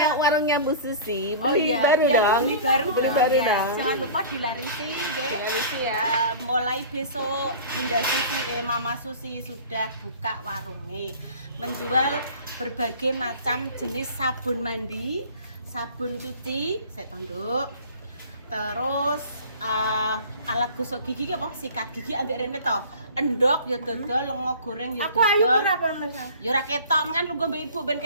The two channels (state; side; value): inverted; both; correlation -0.42